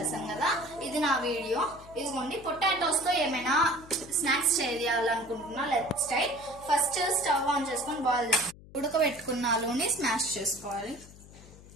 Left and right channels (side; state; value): left; noise; hum, 20 dB below the sound